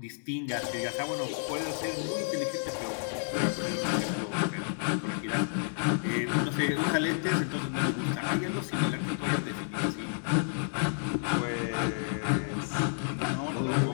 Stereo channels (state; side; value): silent; right; digital silence